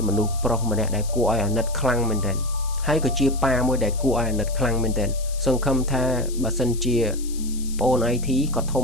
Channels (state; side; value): noise; left; hiss, 15 dB below the sound